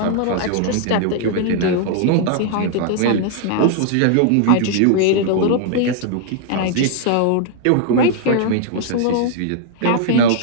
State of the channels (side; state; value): both; different; correlation -0.01